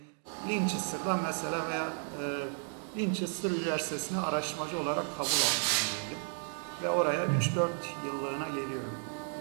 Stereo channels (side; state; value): left; silent; 56 dB below the other